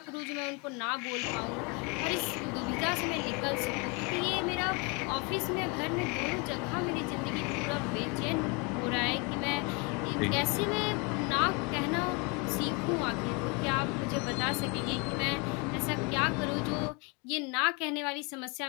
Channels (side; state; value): right; quieter; 31.0 dB